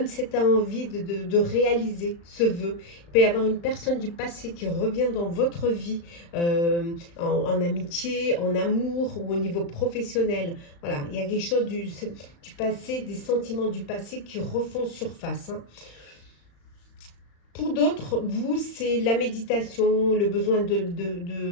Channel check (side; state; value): right; late; 35 ms